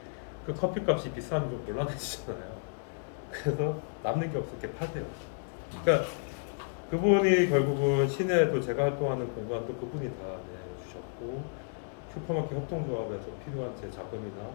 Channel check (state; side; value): silent; right; digital silence